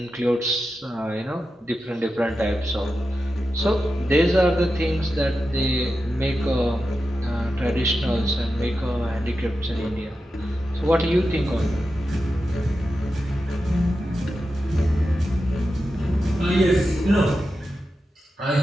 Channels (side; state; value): both; normal; correlation 0.90